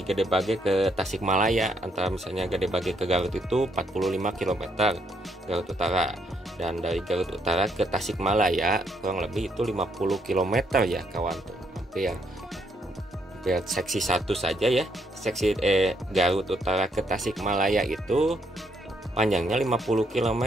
Gede Bage ke Tasikmalaya. Antara misalnya Gede Bage ke Garut itu 45 km Garut Utara, dan dari Garut Utara ke Tasikmalaya kurang lebih itu 50 km ya kawan tuh. Hampir seksi 1 saja ya, seksi Garut Utara ke Tasikmalaya itu panjangnya 50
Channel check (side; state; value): both; normal; correlation 0.73